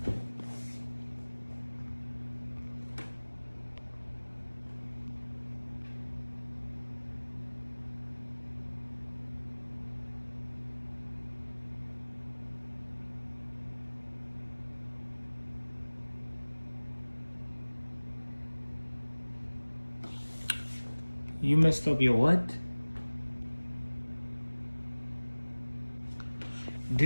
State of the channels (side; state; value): both; inverted; correlation -1.00